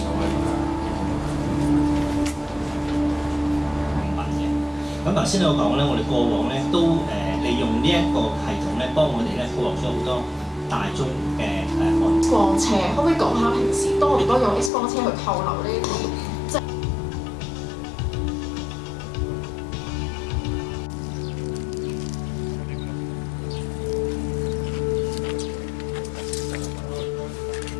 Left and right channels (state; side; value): drops out; right; at 14.7 s